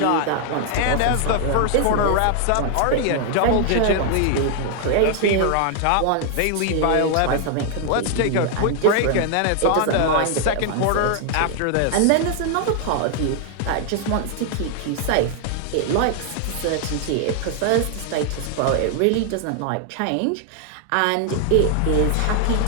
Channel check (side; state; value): both; different; correlation 0.00